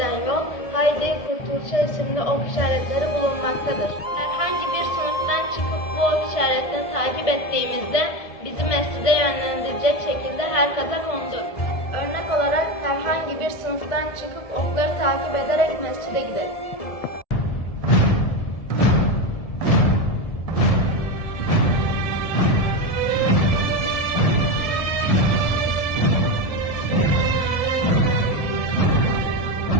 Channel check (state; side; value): late; right; 1.7 ms